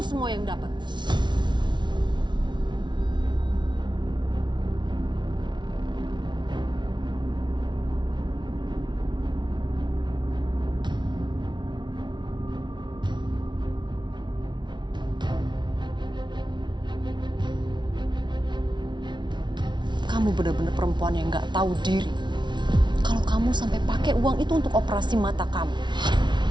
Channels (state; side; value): late; left; 0.22 ms